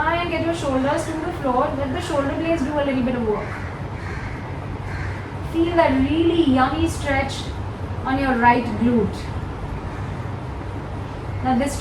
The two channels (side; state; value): both; identical; correlation 1.00